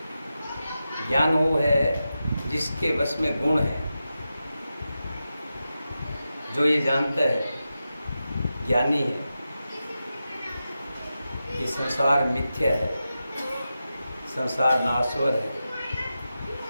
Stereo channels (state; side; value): inverted; both; correlation -0.91